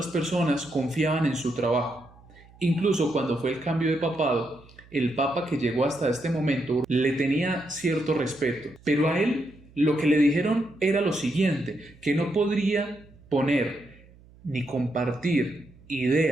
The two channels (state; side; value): noise; right; hum, 25 dB below the sound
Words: personas confiaban en su trabajo. Incluso cuando fue el cambio de papado, el papa que llegó hasta este momento le tenía cierto respeto, pero a él lo que le dijeron era lo siguiente, que no podría poner ni compartir